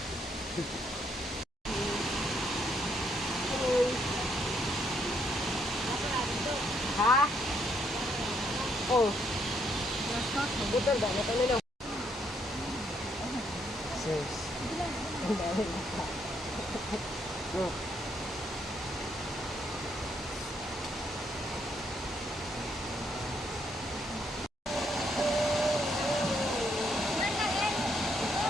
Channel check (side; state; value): both; normal; correlation 0.73